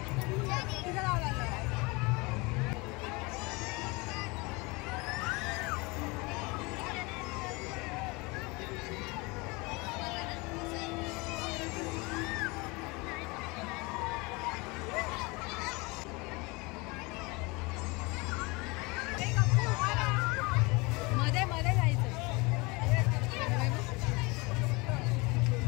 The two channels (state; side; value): quieter; right; 26.1 dB